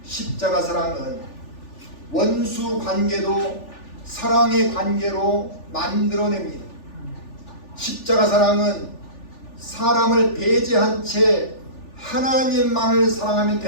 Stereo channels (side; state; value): right; late; 3.4 ms